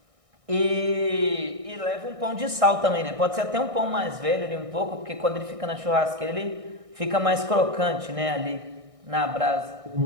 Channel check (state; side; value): late; left; 1.6 ms